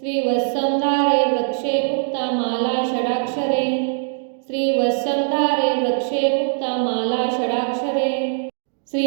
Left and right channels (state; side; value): silent; left; digital silence